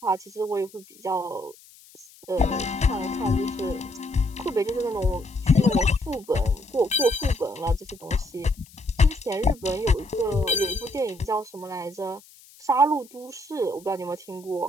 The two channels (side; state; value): left; noise; hiss, 24 dB below the sound